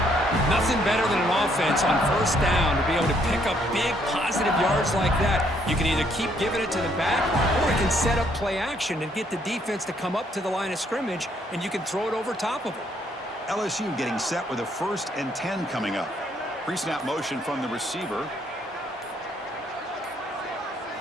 Nothing better than an offense on 1st down to be able to pick up big positive yards like that. You can either keep giving it to the back, or you can set up play action and get the defense to come up to the line of scrimmage, and you can throw it over top of them. LSU getting set with a 1st and 10 coming up. Pre-snap motion from the receiver.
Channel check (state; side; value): normal; both; correlation 0.69